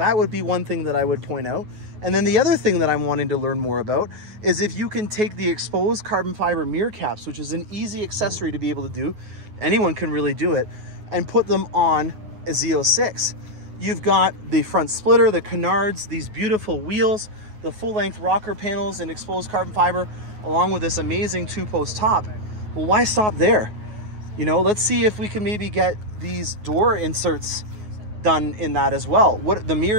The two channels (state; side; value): late; left; 9.4 ms